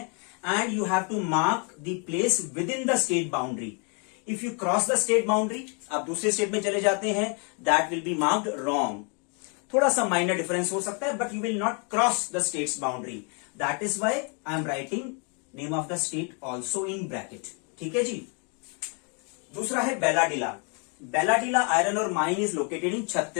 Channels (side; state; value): right; quieter; 36.7 dB